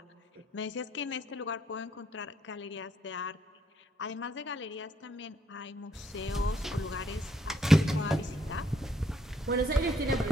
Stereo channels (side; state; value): both; normal; correlation 0.71